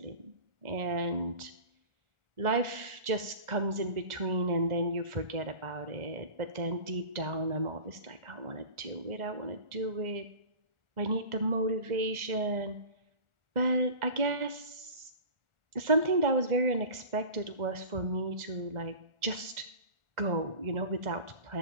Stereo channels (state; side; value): late; left; 1.4 ms